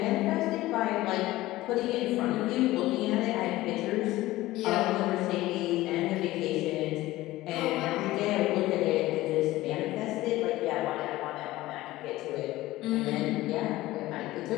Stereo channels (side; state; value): right; quieter; 17.3 dB